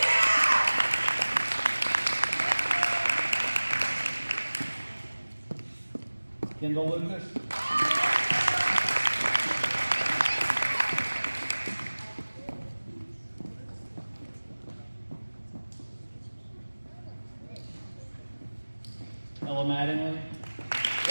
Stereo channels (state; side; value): inverted; both; correlation -1.00